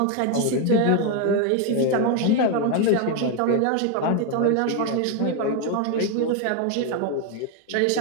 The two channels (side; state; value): both; different; correlation 0.01